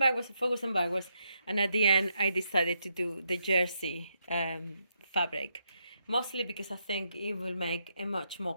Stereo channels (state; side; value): inverted; both; correlation -0.80